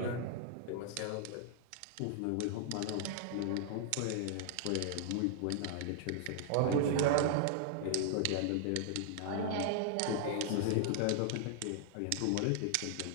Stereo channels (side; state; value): both; different; correlation -0.01